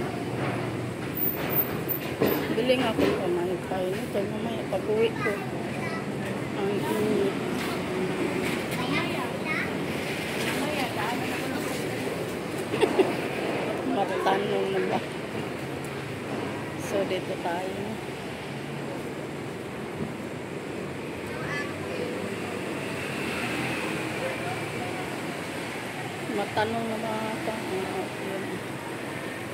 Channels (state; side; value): identical; both; correlation 1.00